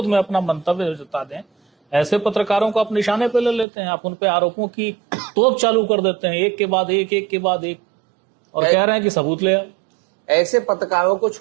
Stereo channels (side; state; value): left; drops out; at 3.7 s